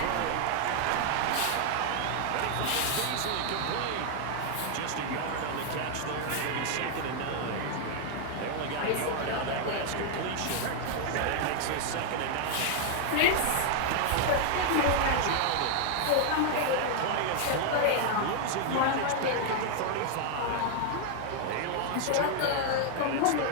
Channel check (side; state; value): both; different; correlation 0.00